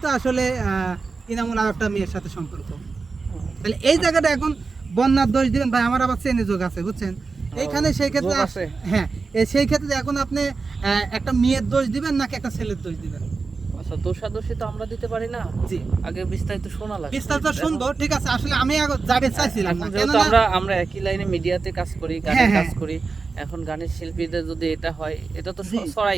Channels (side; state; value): left; quieter; 4.4 dB